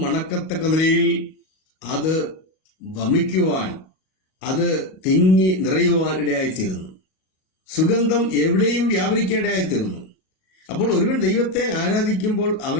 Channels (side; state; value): right; late; 38 ms